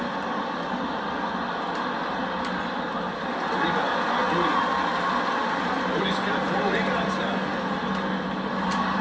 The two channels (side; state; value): both; identical; correlation 1.00